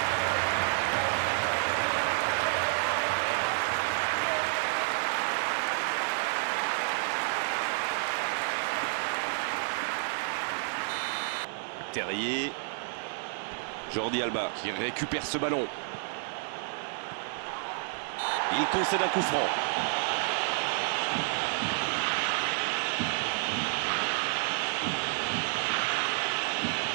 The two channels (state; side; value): silent; left; 58 dB below the other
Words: Terrier. Jordi Alba qui récupère ce ballon. Il concède un coup franc.